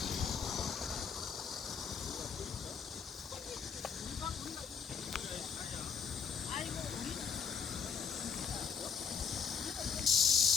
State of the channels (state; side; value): quieter; right; 6.4 dB